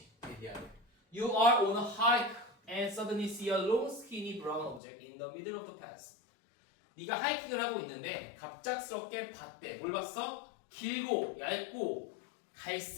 You are on a hike and suddenly see a long skinny brown object in the middle of the path. 네가 하이킹을 하고 있는데 갑작스럽게 봤대. 뭘 봤어? 길고 얇고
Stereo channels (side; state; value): right; drops out; at 4.8 s